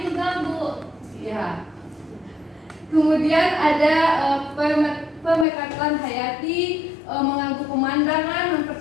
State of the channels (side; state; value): right; drops out; at 5.5 s